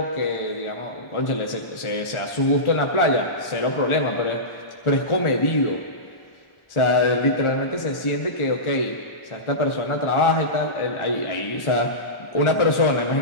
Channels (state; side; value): late; right; 1.4 ms